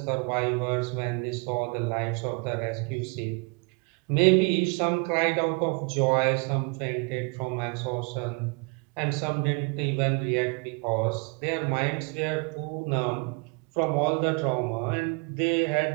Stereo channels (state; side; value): quieter; left; 32.9 dB